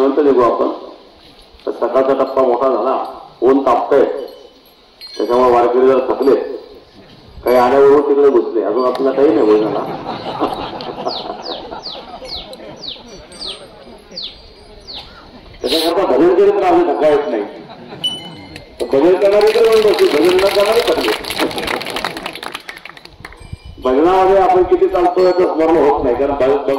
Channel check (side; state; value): both; identical; correlation 1.00